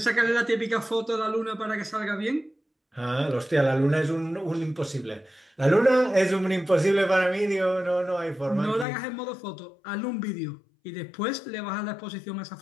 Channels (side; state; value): right; drops out; at 8.8 s